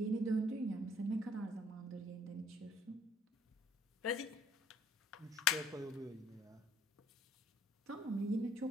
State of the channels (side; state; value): both; normal; correlation 0.61